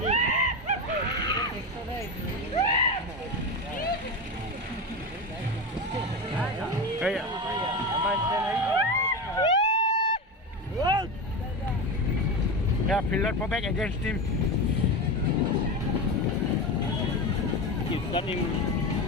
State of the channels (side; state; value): both; normal; correlation 0.21